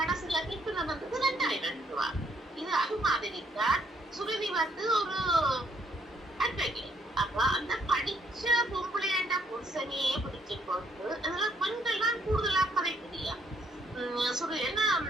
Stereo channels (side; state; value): both; normal; correlation 0.69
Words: தீர்ப்பு வந்தது 2,000 ரூபாய். இது அது மாதிரி தான் சுருதி வந்து ஒரு அட்வொகேட். அப்ப அந்த படிச்ச பொம்பளையாண்ட புருஷனையே பிடிச்சு கொண்டு அதெல்லாம் பெண்கள் தான் கூடுதலா கதைக்குதியா என்ன